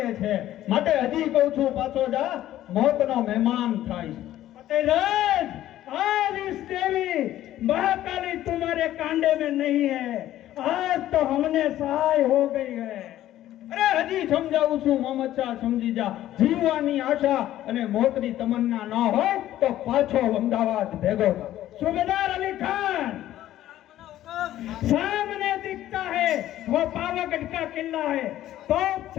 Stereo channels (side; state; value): right; quieter; 13.3 dB